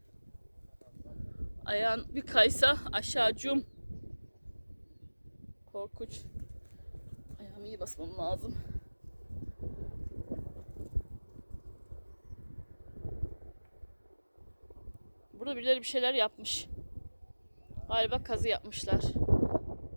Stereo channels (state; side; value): inverted; both; correlation -1.00